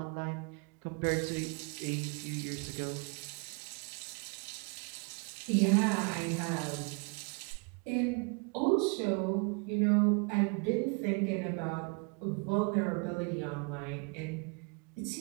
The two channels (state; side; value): quieter; left; 32.8 dB